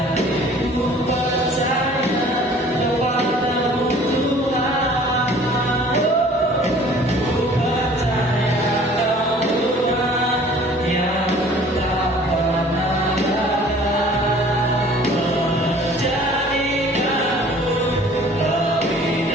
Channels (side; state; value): both; normal; correlation 0.51